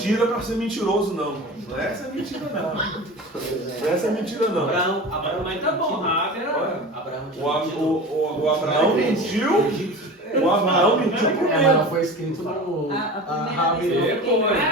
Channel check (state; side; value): normal; both; correlation 0.33